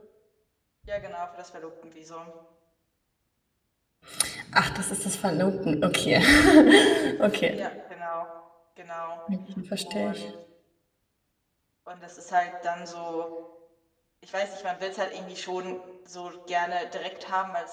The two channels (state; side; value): identical; both; correlation 1.00